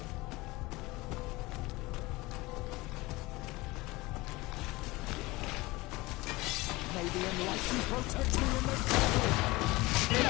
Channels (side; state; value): right; quieter; 21.5 dB